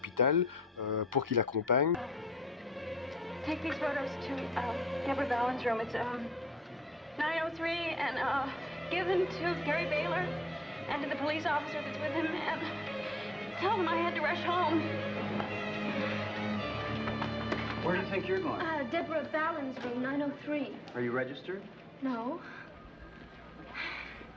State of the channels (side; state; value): both; normal; correlation 0.69